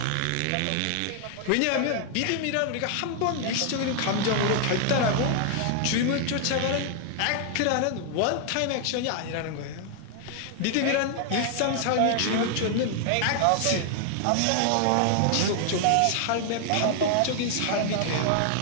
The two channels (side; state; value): both; different; correlation 0.00